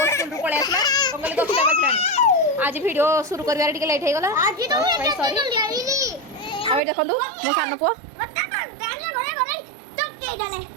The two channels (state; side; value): drops out; left; at 6.8 s